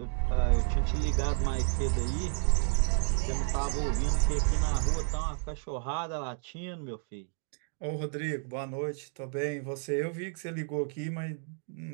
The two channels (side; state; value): left; silent; 57 dB below the other